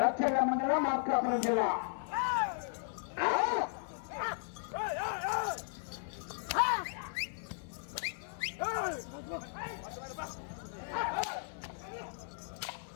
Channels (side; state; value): right; silent; 54 dB below the other